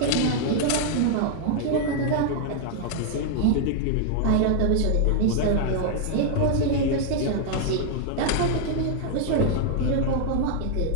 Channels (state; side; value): different; both; correlation -0.01